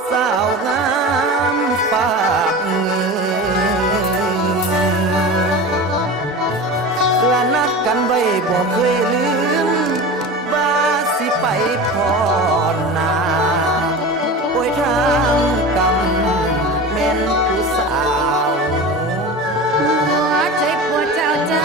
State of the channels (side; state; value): both; normal; correlation 0.31